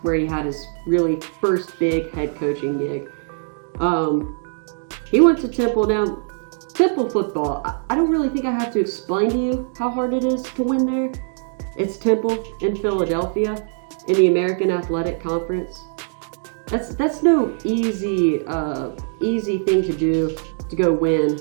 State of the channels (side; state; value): left; silent; 65 dB below the other